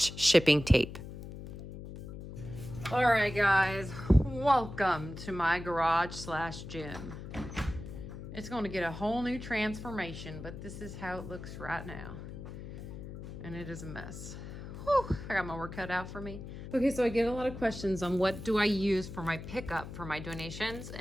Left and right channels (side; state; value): left; noise; hum, 10 dB below the sound